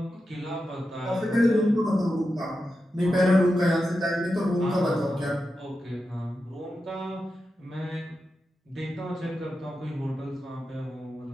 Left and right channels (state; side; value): normal; both; correlation 0.90